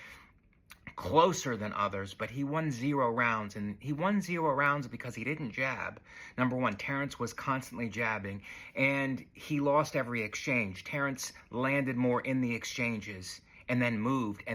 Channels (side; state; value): both; identical; correlation 1.00